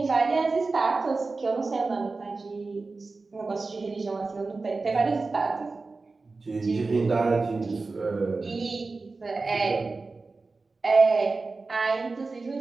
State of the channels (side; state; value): left; quieter; 3.8 dB